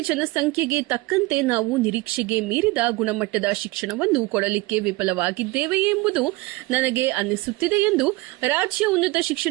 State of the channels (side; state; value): left; quieter; 21.5 dB